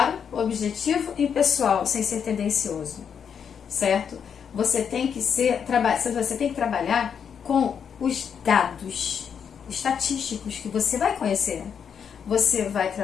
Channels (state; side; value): quieter; right; 7.4 dB